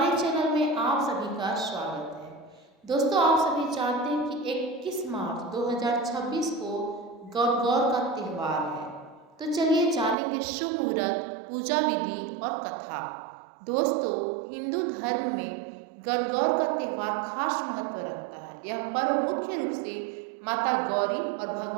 चैनल में आप सभी का स्वागत है। दोस्तों, आप सभी जानते हैं कि 21 मार्च 2026 को गणगौर का त्यौहार है। तो चलिए जानेंगे शुभ मुहूर्त, पूजा विधि और कथा। दोस्तों, हिंदू धर्म में गणगौर का त्यौहार खास महत्व रखता है। यह पर्व मुख्य रूप से माता गौरी और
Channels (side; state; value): left; drops out; at 10.2 s